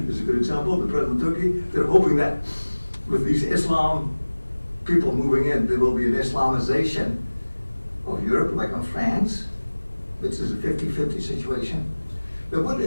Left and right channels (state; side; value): inverted; both; correlation -1.00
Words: is a good example, the president of Turkey, they're hoping that with these Islam people moving in, there will be an Islamization of Europe, like in France, which is a 50-50 situation. But